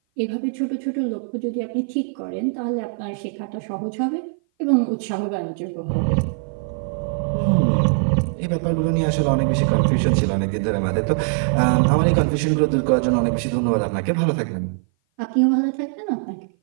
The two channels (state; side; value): silent; left; 57 dB below the other